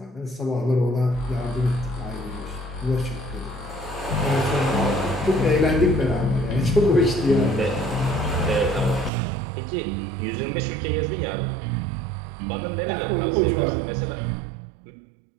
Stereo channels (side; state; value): left; drops out; at 9.1 s